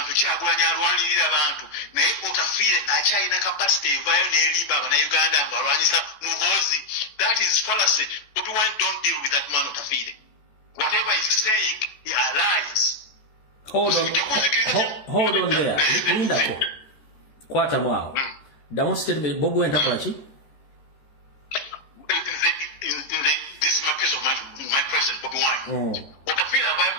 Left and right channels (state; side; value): late; right; 14 ms